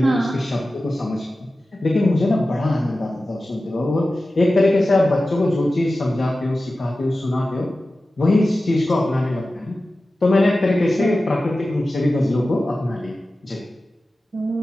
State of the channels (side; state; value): both; normal; correlation 0.95